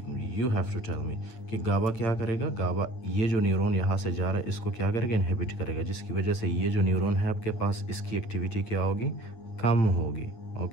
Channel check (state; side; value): late; right; 8.9 ms